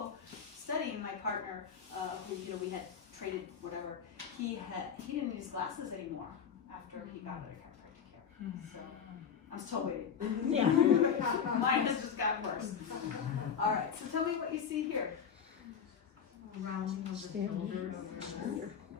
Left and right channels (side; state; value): right; quieter; 7.4 dB